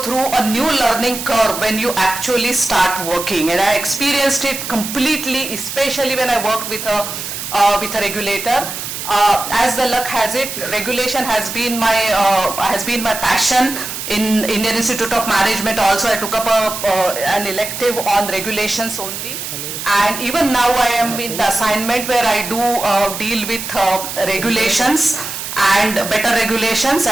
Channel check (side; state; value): right; noise; hiss, 7 dB below the sound